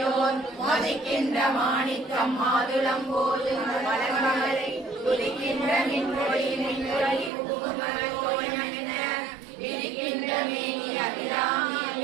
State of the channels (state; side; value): drops out; left; at 7.3 s